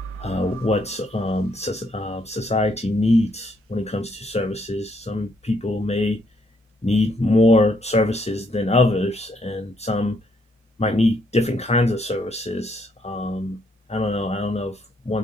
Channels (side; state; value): both; normal; correlation 0.72